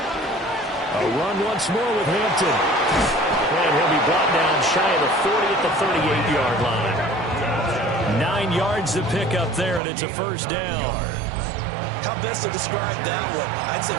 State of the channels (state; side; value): drops out; left; at 9.8 s